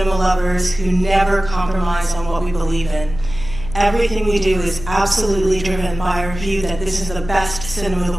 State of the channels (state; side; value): noise; left; hum, 11 dB below the sound